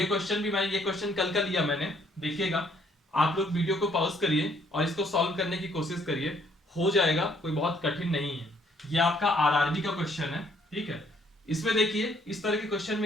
क्वेश्चन कल का लिया मैंने, देखिएगा। आप लोग वीडियो को पॉज करिए और इसको सॉल्व करने की कोशिश करिए। हो जाएगा, कोई बहुत कठिन नहीं है। ये आपका आरआरबी का क्वेश्चन है। ठीक है। इसमें देखिए इस तरह के क्वेश्चन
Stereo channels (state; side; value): normal; both; correlation 0.65